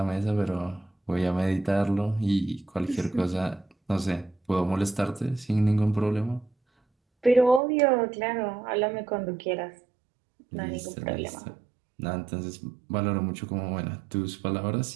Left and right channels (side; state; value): left; drops out; at 7.6 s